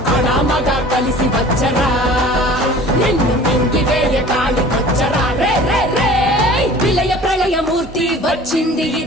అనామగా కలిసి వచ్చరా నిన్ను మింగి వేయ కాలికొచ్చరా. రే రే రే విలయ ప్రళయమూర్తి వచ్చింది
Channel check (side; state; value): both; normal; correlation 0.45